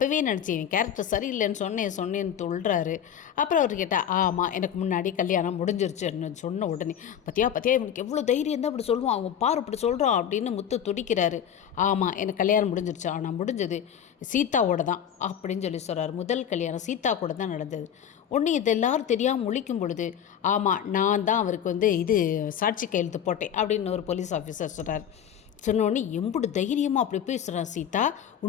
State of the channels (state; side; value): quieter; right; 9.1 dB